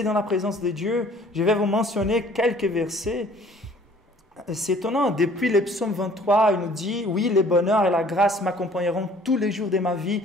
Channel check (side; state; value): both; normal; correlation 0.54